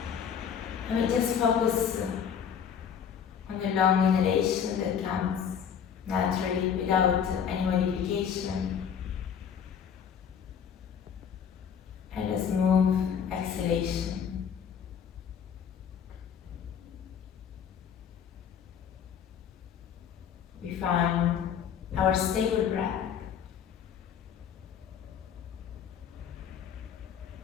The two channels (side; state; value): right; quieter; 7.9 dB